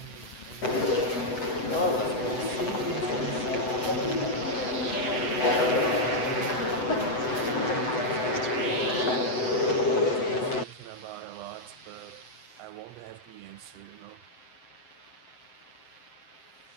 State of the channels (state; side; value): late; right; 8.0 ms